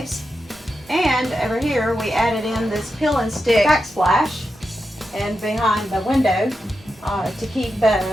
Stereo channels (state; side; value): normal; both; correlation 0.88